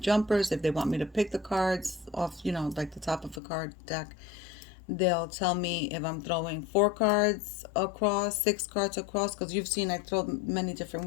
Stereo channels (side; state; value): right; drops out; at 3.4 s